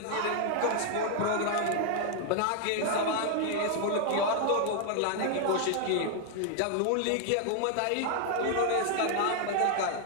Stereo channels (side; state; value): both; different; correlation 0.00